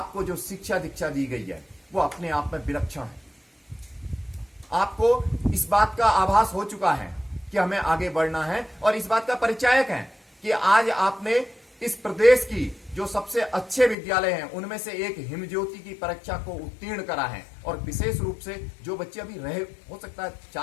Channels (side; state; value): right; drops out; at 14.0 s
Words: जो शिक्षा दीक्षा दी गई है वो अपने आप में विलक्षण है। आपको इस बात का आभास हो चुका है कि हमें आगे बढ़ना है, और इस बात का परिचायक है कि आज आपने इस प्रदेश की जो सबसे अच्छे विद्यालय हैं उनमें से एक हिमज्योति की परीक्षा को उत्तीर्ण करा है। और विशेष रूप से जो बच्चे अभी रहे, हो सकता है